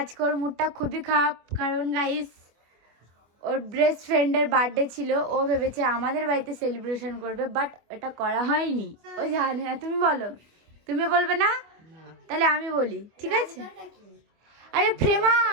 ওর মুডটা খুবই খারাপ। কারণ গাইস, ওর বেস্ট ফ্রেন্ডের বার্থডে ছিল, ও ভেবেছে আমাদের বাড়িতে সেলিব্রেশন করবে, বাট এটা করা হয়নি। ও জানে না। তুমি বলো। তুমি বলবে না? তাহলে আমি বলি, ঠিক আছে? আরে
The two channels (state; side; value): late; left; 25 ms